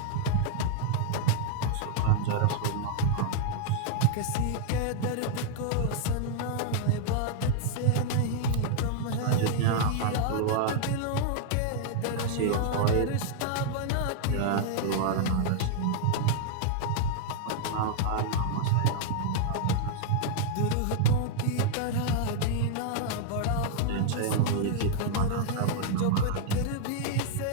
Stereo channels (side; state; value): both; different; correlation -0.01